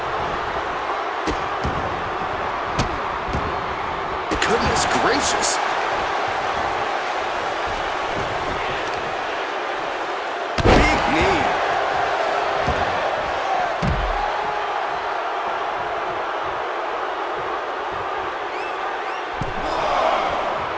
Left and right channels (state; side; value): identical; both; correlation 1.00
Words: Goodness gracious. Big knee.